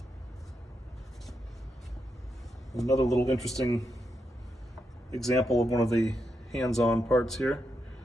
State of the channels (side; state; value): both; normal; correlation 0.84